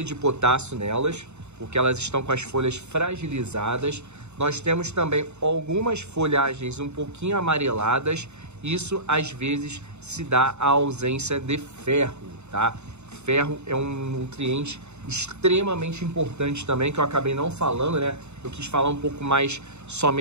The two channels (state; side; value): late; left; 0.82 ms